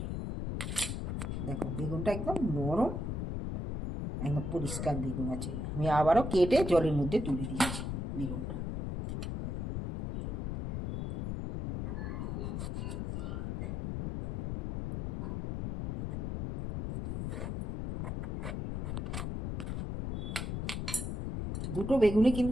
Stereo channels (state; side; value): noise; left; rumble, 3 dB below the sound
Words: দেখো বেগুনটা একদম নরম, একদম পরিষ্কার বেগুন আছে। আমি আবারও কেটে জলের মধ্যে তুলে দিচ্ছি বেগুনটা। দুটো বেগুনই